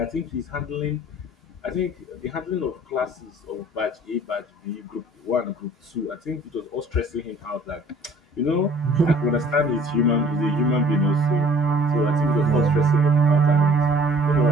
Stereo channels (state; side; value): normal; both; correlation 0.53